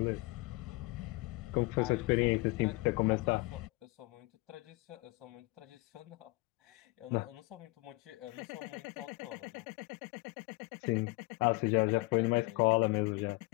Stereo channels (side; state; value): right; quieter; 24.3 dB